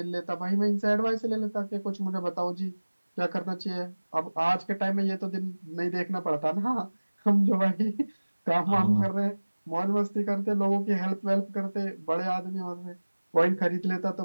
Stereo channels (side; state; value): both; inverted; correlation -1.00